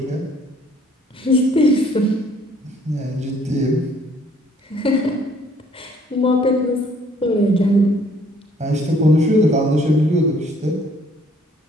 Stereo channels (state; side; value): normal; both; correlation 0.61